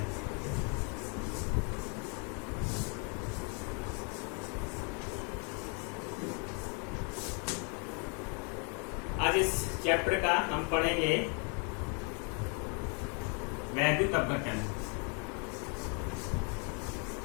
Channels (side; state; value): right; quieter; 36.9 dB